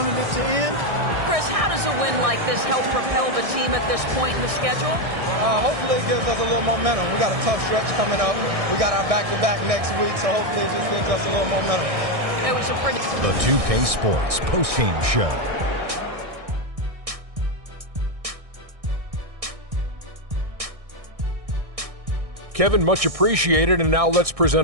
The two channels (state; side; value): late; left; 1.6 ms